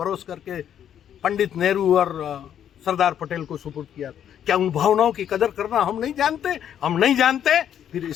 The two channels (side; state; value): right; quieter; 9.7 dB